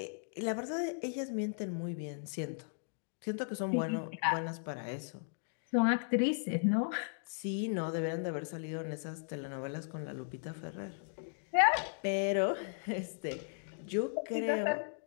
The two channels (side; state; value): right; silent; digital silence